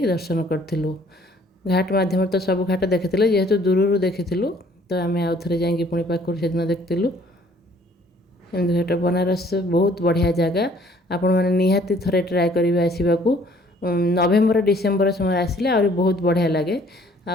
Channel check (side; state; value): both; normal; correlation 0.59